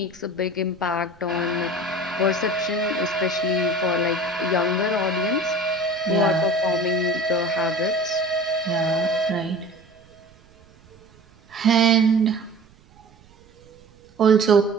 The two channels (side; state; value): right; noise; rumble, 28 dB below the sound